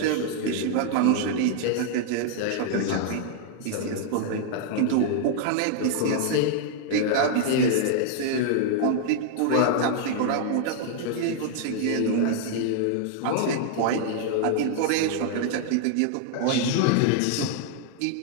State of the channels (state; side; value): different; both; correlation 0.00